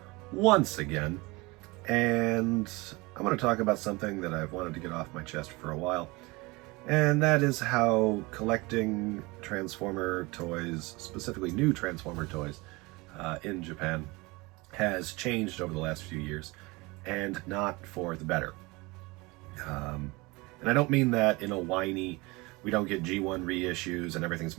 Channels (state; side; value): quieter; left; 24.2 dB